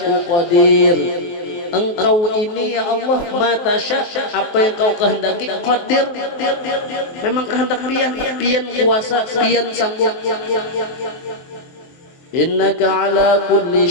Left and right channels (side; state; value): right; late; 23 ms